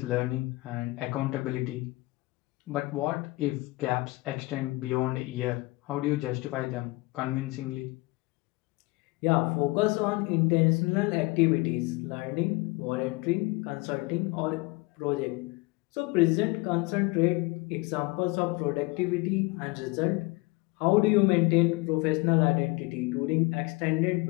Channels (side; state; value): right; quieter; 23.5 dB